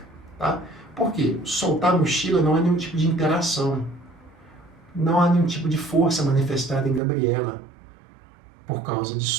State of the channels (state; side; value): drops out; left; at 7.0 s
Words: tá? Por quê? Soltar a mochila não há nenhum tipo de interação. Não há nenhum tipo de força manifestada em Gabriela por causa